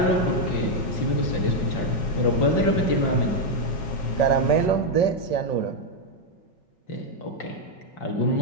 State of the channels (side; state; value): right; late; 5.3 ms